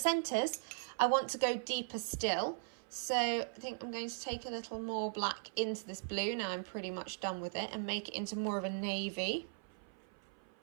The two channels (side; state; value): left; silent; 52 dB below the other